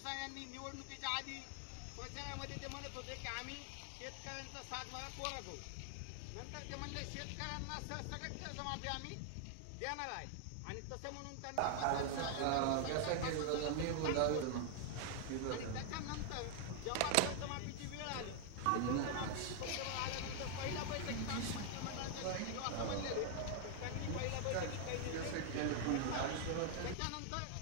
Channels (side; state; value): both; different; correlation 0.00